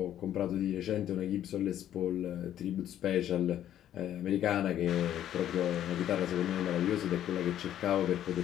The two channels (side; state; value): right; quieter; 11.3 dB